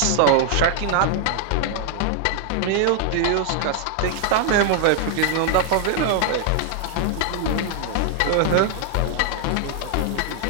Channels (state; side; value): different; both; correlation 0.00